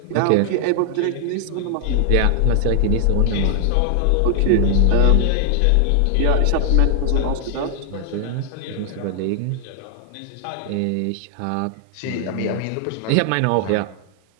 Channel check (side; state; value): both; different; correlation 0.00